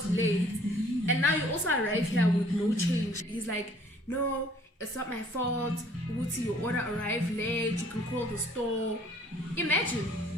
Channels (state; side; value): normal; both; correlation 0.57